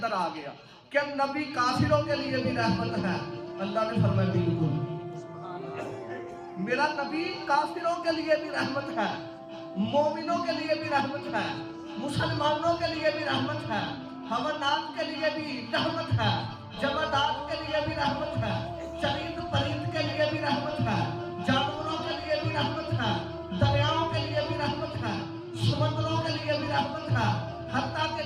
آ گیا کہ نبی کافروں کے لیے بھی رحمت ہے. اللہ نے فرمایا بالکل میرا نبی کافروں کے لیے بھی رحمت ہے, مومنوں کے لیے بھی رحمت ہے, مسلمانوں کے لیے بھی رحمت ہے, حیوانات کے لیے بھی رحمت ہے, جمادات کے لیے بھی رحمت ہے, چرند پرند کے لیے بھی رحمت ہے, جانوروں کے لیے بھی رحمت ہے, دریاؤں کے لیے بھی رحمت ہے, سمندروں کے لیے بھی رحمت ہے, حتیٰ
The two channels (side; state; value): both; identical; correlation 1.00